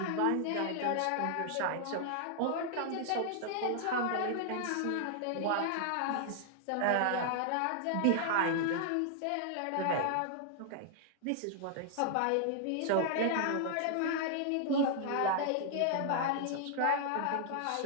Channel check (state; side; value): different; both; correlation 0.00